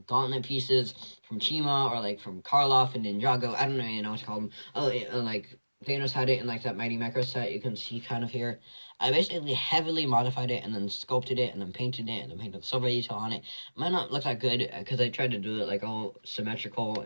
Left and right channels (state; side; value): inverted; both; correlation -1.00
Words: gauntlet pieces from Chima or like from Karloff and Ninjago. I don't even know what to call them. Oh, like Thanos had it in like that Mighty Macro set you can see kind of here. I basically heavily modified it and then sculpted it and then painted it and then painted silver detail on it. Might not look that good because I tried to do it like all symmetrical